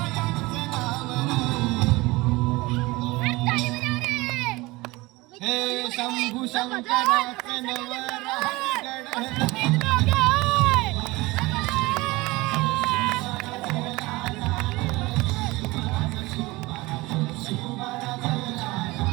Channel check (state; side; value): quieter; left; 21.8 dB